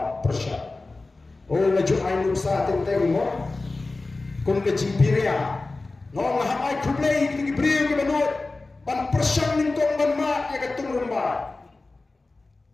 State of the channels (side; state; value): right; quieter; 3.4 dB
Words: Oh laju ainu sa tenteng mo. Kun ke jimpiria. Ngong hai kublei ki kiprio ki banot. Pan persyang ningkong ban mat ya ketung remba.